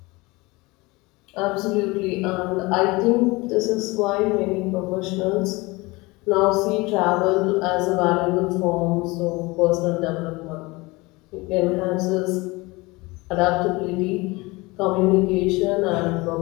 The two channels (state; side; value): quieter; right; 23.5 dB